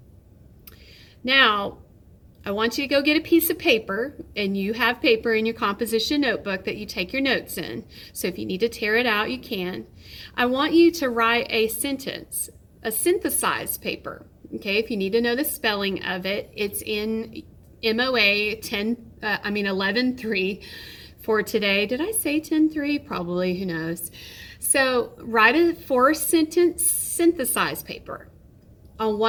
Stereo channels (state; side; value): identical; both; correlation 1.00